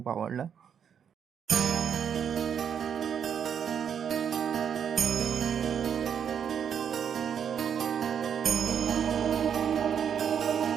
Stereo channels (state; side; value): quieter; left; 8.0 dB